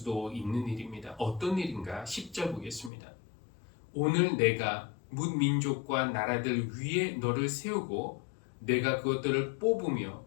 있는 일입니다. 어떤 일인가? 10절 보겠습니다. 오늘 내가 문 민족과 나라들 위에 너를 세우고 내가 그것들을 뽑으며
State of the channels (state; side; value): drops out; right; at 2.9 s